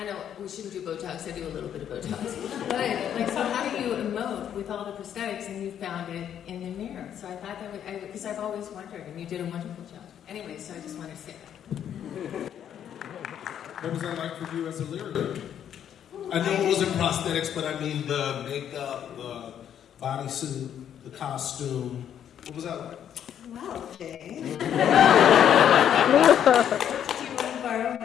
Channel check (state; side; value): quieter; right; 9.5 dB